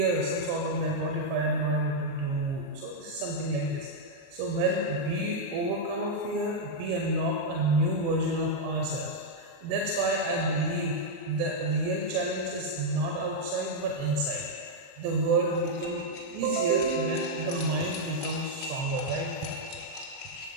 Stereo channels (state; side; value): late; left; 29 ms